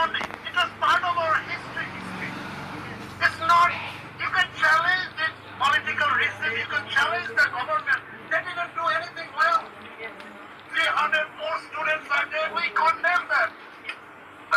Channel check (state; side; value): identical; both; correlation 1.00